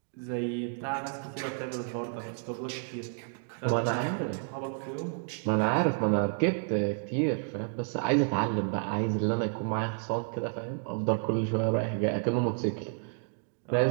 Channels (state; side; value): silent; left; 55 dB below the other